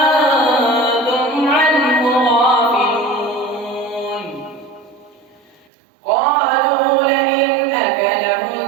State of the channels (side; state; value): left; drops out; at 5.7 s